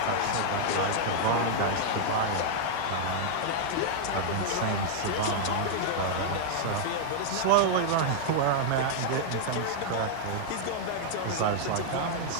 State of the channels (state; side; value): different; both; correlation -0.01